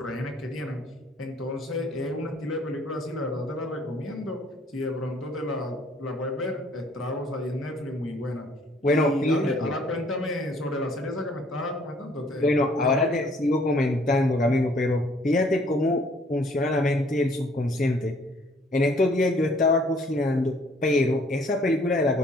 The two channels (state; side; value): normal; both; correlation 0.60